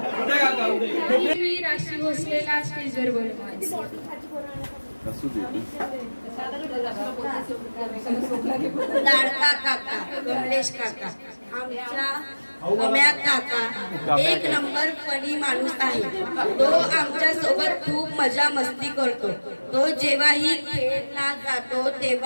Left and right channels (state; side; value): inverted; both; correlation -1.00